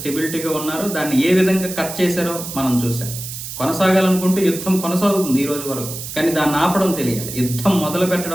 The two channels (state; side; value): noise; right; hiss, 9 dB below the sound